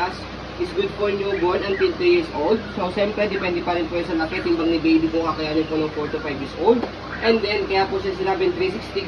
is good for newborn until 3 years old. So siyempre depende pa rin po sa laki timbang ni baby kung kakayanin po ng 4 to 5 years old. And then kaya po siya sinabing 360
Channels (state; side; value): identical; both; correlation 1.00